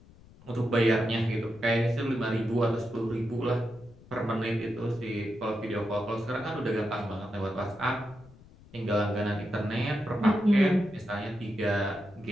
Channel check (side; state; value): left; noise; rumble, 23 dB below the sound